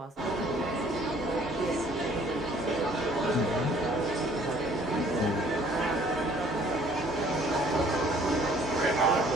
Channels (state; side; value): normal; both; correlation 0.58